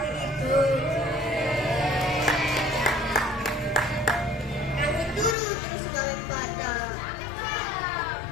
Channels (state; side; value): drops out; right; at 5.4 s